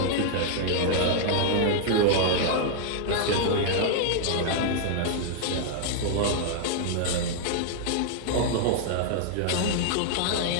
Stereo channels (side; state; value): both; different; correlation -0.01